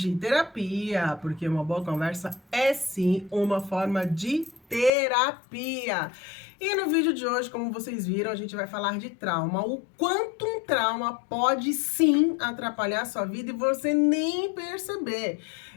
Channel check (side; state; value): right; drops out; at 4.9 s